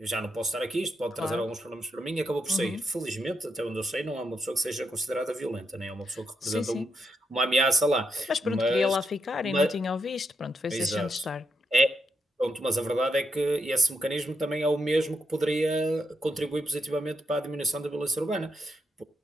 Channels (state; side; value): normal; both; correlation 0.82